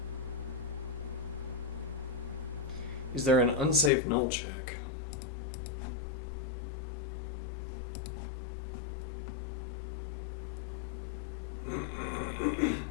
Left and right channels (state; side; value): drops out; right; at 3.9 s